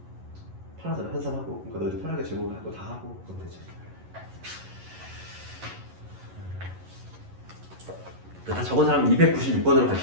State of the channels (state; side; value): late; left; 11 ms